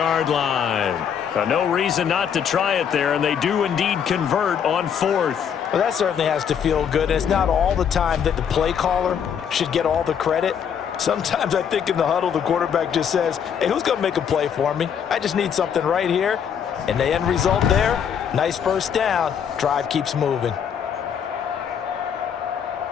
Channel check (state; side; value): quieter; right; 7.9 dB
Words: line. No reason not to try it there, and they do indeed convert on 4th. Well, that certainly has to feel good. It's not all the time that the play caller should get all the credit. Sometimes I think in the huddle, the quarterback just says, hey, who's going to make a play for me? I just need something right here. And the end result there, nice first down. Drive keeps moving.